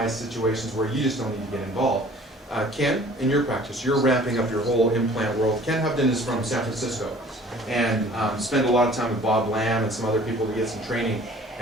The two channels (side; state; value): both; normal; correlation 0.51